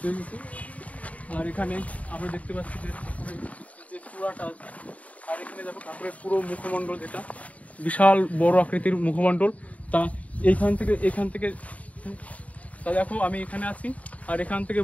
গেছি। আর এখানে আমরা দেখতে পাচ্ছি যে ঠাকুরের যে চূড়াটা আছে, আর এখানে দেখো ঠাকুরের পুরো মুখমণ্ডল, যেটা বিশাল বড় আকৃতির মুখমণ্ডল। তা এখান থেকে তা দেখো আমি এখানে আছি, আর এখান থেকে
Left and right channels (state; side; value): late; right; 0.069 ms